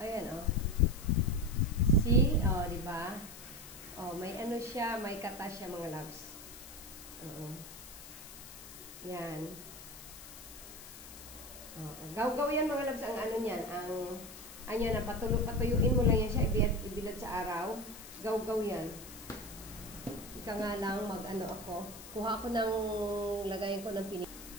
Ayan, See? Diba? May siya, may kata siya, mga labs. Yan. Gaw-gaw yan, mga labs, ang niyan. Patuyuin mo lang yan siya, ibilad sa araw. Gaw-gaw yan. Ika nga lang, kuha ako ng, lagayin ko ng pinig.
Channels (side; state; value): left; noise; hiss, 15 dB below the sound